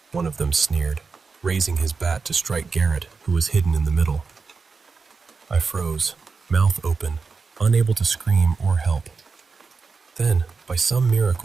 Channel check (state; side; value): quieter; left; 4.7 dB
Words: one of them sneered, raising his bat to strike Garrett, who was hidden in the middle. I froze, mouth open, unable to scream or help. Then, by some